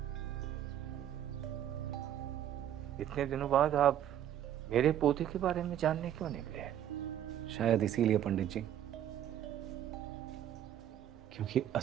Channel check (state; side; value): quieter; left; 10.9 dB